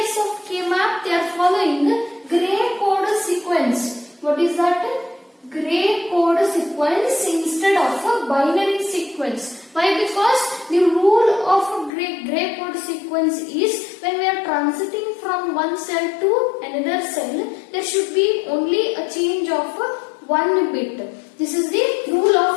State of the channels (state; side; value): drops out; right; at 11.9 s